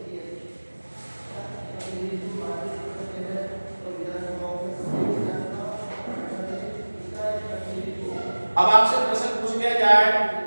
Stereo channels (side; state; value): both; inverted; correlation -1.00